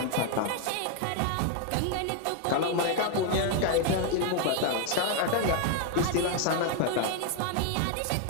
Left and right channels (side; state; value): both; different; correlation 0.00